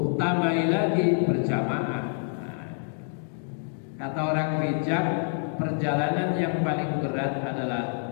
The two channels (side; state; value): right; silent; digital silence